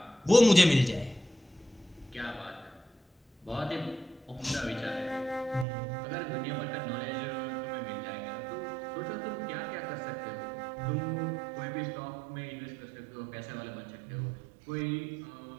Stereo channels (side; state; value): left; drops out; at 5.7 s